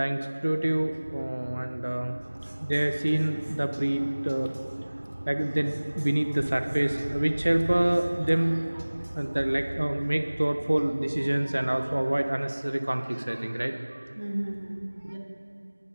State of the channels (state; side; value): inverted; both; correlation -1.00